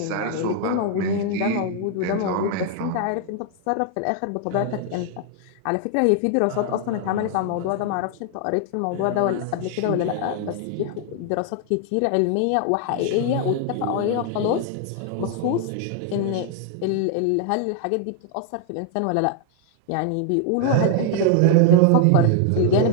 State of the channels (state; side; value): different; both; correlation 0.00